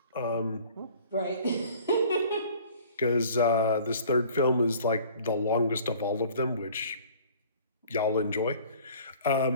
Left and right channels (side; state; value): both; inverted; correlation -0.50